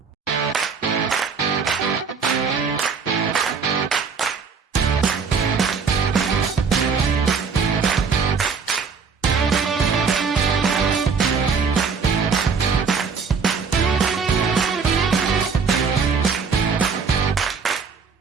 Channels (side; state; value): left; quieter; 5.5 dB